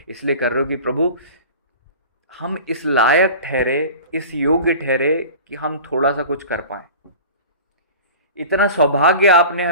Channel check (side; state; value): both; inverted; correlation -0.38